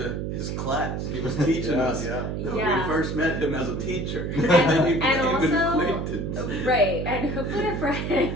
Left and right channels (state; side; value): noise; right; hum, 3 dB below the sound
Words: his class. He was teaching us. We first met him as a teacher. And then you and became an also, acquaintance. right, and hopefully a